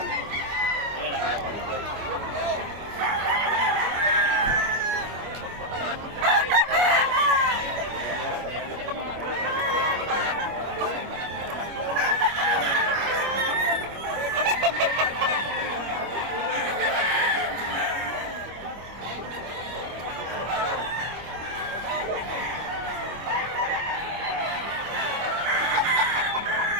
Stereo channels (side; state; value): left; late; 25 ms